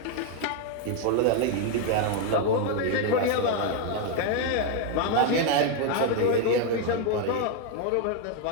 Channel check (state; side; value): different; both; correlation 0.01